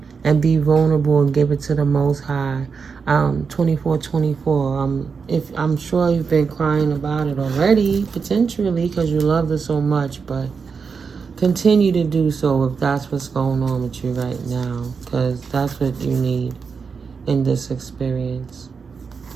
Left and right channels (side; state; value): left; quieter; 5.5 dB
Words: and be vulnerable and give it to the Most High. 24/24. If I'm sure you've been crying about it already, potentially, because you love it so much, but continue to do so if that's what's going on with you right now, because that's what you need in this experience.